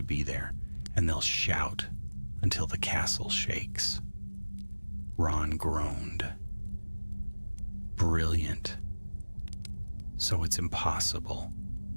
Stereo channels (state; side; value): inverted; both; correlation -1.00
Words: be there, and they'll shout until the castle shakes. Ron groaned. Brilliant. So it's impossible.